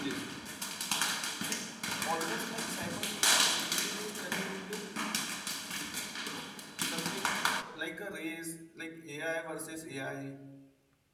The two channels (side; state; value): both; identical; correlation 1.00